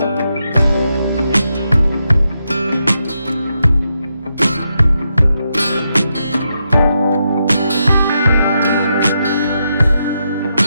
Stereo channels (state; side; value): inverted; both; correlation -0.84